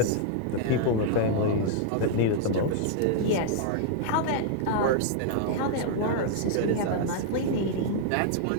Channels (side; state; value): both; different; correlation 0.00